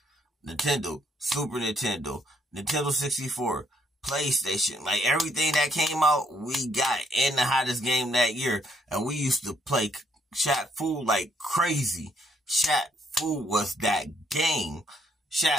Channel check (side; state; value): both; normal; correlation 0.70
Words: Nintendo, Super Nintendo, Nintendo 64, PlayStation, like everything that came out, we got in the hottest game that year. And we used to play Shaq Fu like crazy. Shaq Fu was that game.